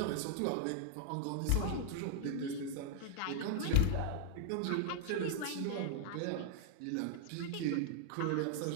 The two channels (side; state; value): both; different; correlation -0.01